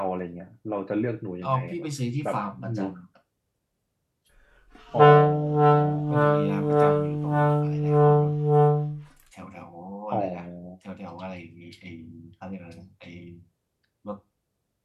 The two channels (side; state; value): both; identical; correlation 1.00